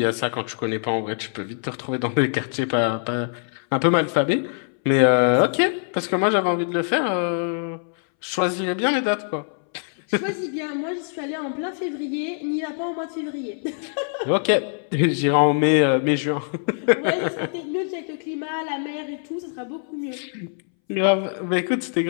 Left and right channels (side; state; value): right; silent; 63 dB below the other